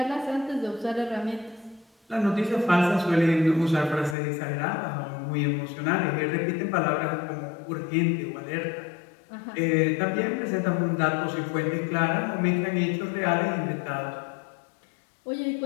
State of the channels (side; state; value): right; drops out; at 4.2 s